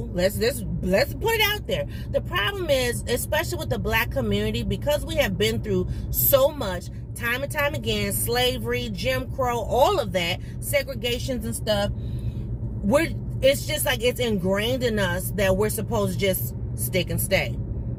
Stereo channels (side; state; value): both; identical; correlation 1.00